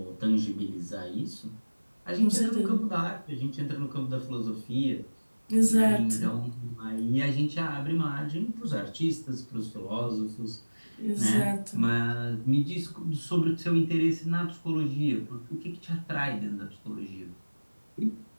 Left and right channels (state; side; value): inverted; both; correlation -1.00